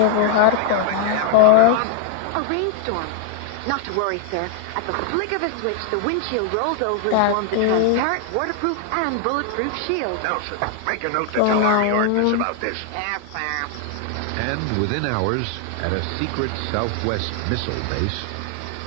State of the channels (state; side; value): different; both; correlation 0.00